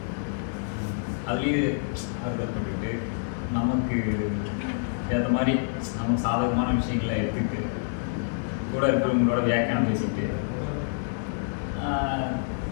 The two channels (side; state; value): right; silent; digital silence